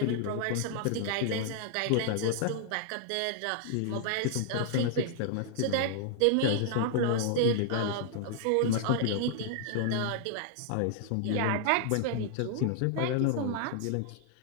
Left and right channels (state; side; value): different; both; correlation 0.00